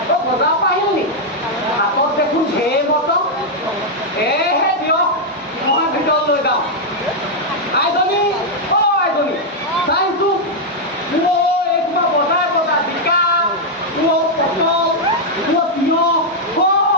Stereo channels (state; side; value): normal; both; correlation -0.03